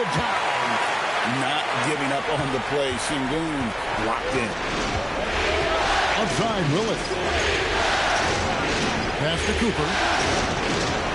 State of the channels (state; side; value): identical; both; correlation 1.00